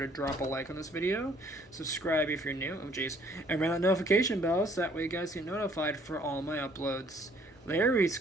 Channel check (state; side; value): normal; both; correlation 0.61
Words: drop a like on this video, subscribe if you're new, and ring that notification bell so that way you guys get notified for all my uploads. Later,